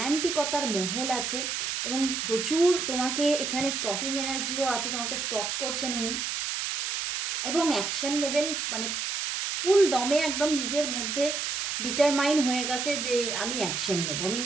মহল আছে, এবং প্রচুর তোমাকে এখানে স্টকিং এনার্জিও আছে, তোমাকে স্টক করছেন উনি, এবং অ্যাকশন নেবেন, মানে ফুল দমে একদম নিজের মধ্যে ডিটারমাইন হয়ে গেছে যে আমি অ্যাকশন নেব, আমি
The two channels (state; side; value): noise; right; hiss, 2 dB below the sound